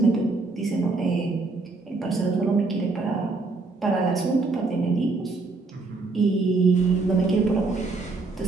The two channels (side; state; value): left; quieter; 3.7 dB